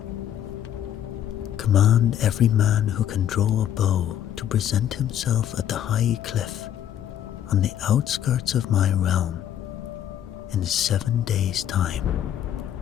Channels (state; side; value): quieter; right; 10.6 dB